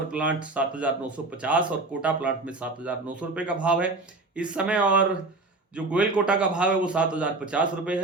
प्लांट 7,950 और कोटा प्लांट में 7,900 रुपए का भाव है इस समय। और जो गोयल कोटा का भाव है वो 7,050 रुपए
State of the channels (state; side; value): quieter; left; 3.2 dB